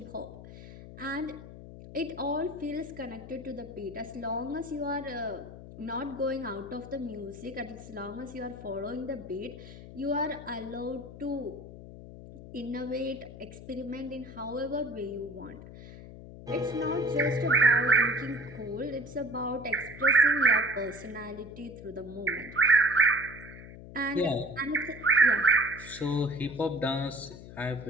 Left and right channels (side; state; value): left; noise; hum, 15 dB below the sound